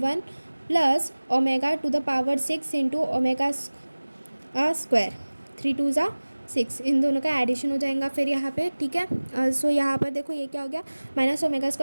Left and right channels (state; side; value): inverted; both; correlation -1.00